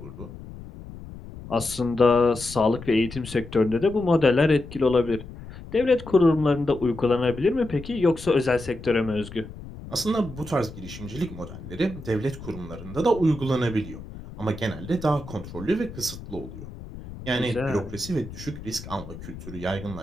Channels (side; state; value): left; noise; rumble, 14 dB below the sound